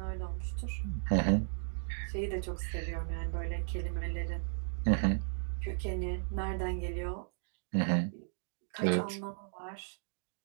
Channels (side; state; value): left; silent; digital silence